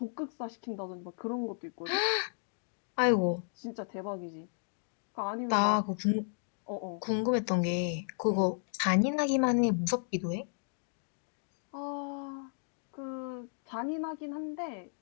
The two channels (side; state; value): right; silent; digital silence